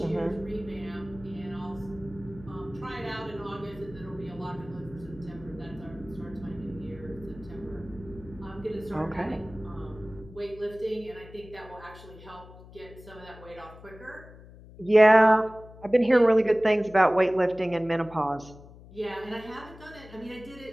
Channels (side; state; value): left; noise; hum, 19 dB below the sound